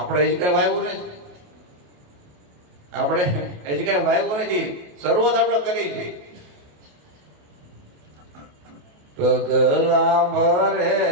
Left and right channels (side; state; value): left; late; 28 ms